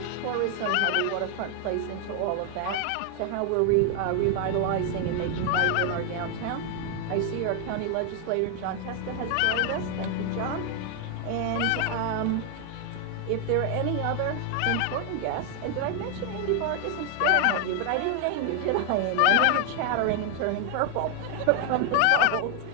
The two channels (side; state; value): both; different; correlation 0.00